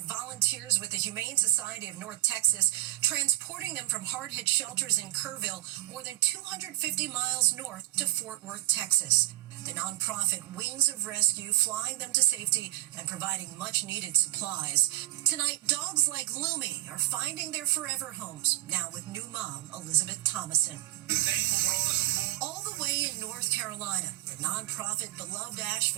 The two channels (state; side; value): quieter; left; 16.4 dB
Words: with the Humane Society of North Texas, transporting them from hard-hit shelters in Kerrville, more than 250 miles north to Fort Worth, Texas. The nonprofit Wings of Rescue flying them to safety and providing much-needed supplies. Tonight, dogs like Lumi are finding their forever homes, now with new mom, Elizabeth Thomason. All the way in North Carolina, the nonprofit Beloved